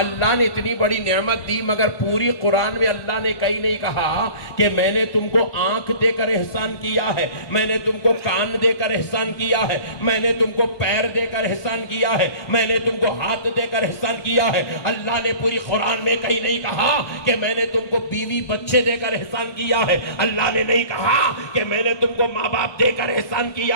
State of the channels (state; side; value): late; right; 1.2 ms